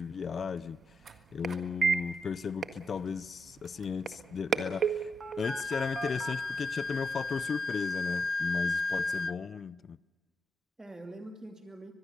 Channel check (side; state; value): both; normal; correlation 0.85